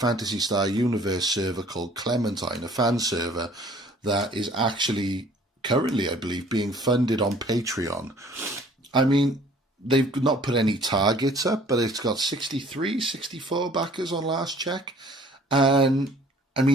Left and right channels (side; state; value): both; normal; correlation 0.54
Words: Star Universe server called Clementine, a fan server, that is actually currently, I believe, being funded on Patreon. I mean, they've not put any targets up, but it's got 63, 64 backers on last check. And, I